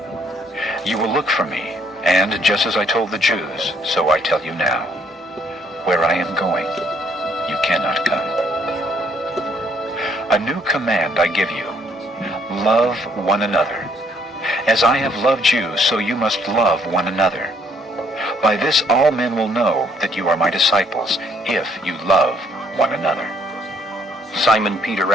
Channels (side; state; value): both; normal; correlation 0.66